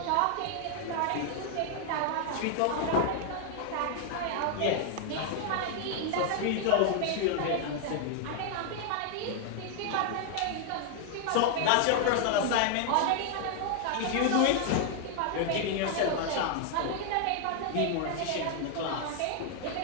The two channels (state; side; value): different; both; correlation 0.00